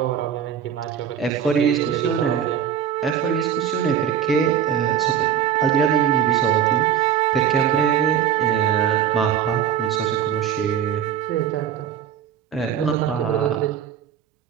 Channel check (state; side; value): quieter; left; 9.0 dB